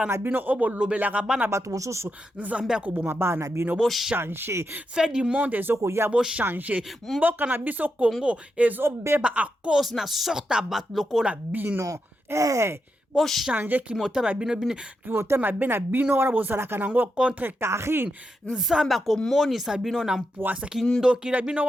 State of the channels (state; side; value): normal; both; correlation 0.85